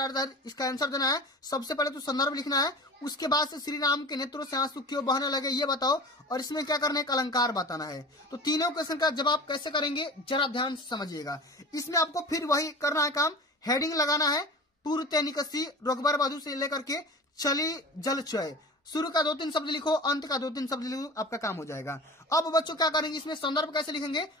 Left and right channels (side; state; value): both; normal; correlation 0.36